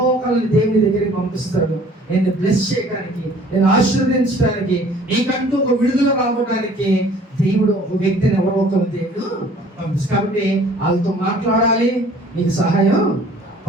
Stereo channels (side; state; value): both; normal; correlation 0.53